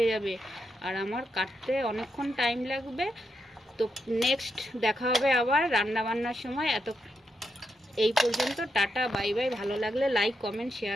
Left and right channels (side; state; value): both; normal; correlation 0.83